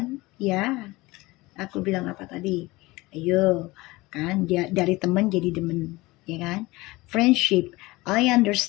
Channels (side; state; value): right; quieter; 21.1 dB